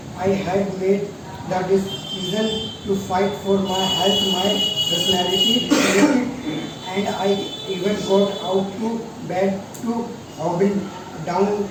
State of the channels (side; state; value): both; identical; correlation 1.00